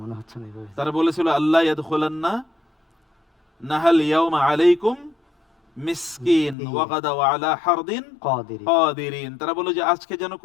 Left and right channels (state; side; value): drops out; right; at 6.6 s